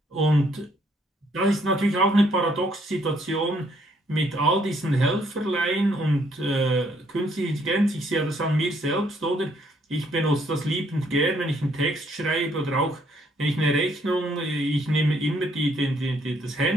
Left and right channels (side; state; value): both; normal; correlation 0.68